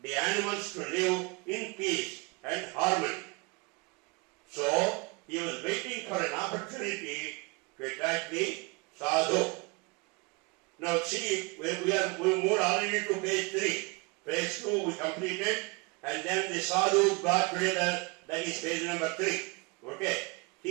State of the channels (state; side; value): quieter; left; 28.3 dB